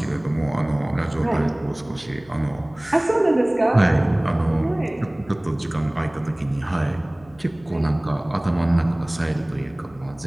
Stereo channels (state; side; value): noise; left; hum, 25 dB below the sound